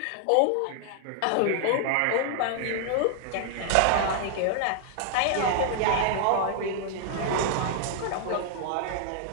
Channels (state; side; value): different; both; correlation 0.00